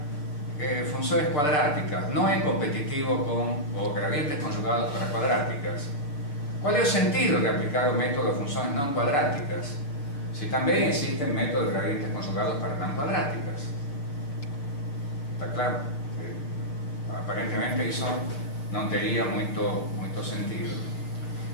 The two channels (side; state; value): right; late; 6.8 ms